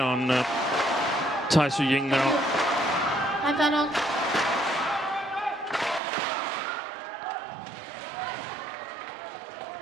on Tai Tzu Ying now. Ratchanok.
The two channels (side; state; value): left; drops out; at 6.0 s